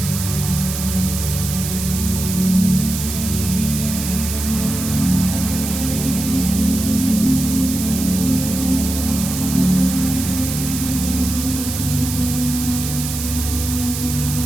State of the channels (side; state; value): right; noise; hiss, 6 dB below the sound